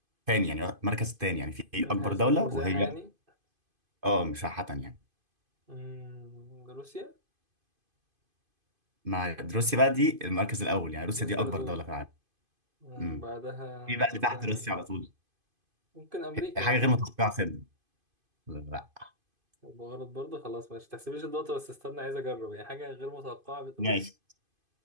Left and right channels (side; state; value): left; late; 2.5 ms